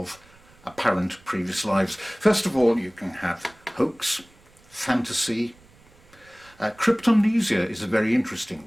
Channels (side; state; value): right; noise; rumble, 28 dB below the sound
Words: apparent previous lives. First of all, you can have hoax, fantasy. Cryptomnesia is a very interesting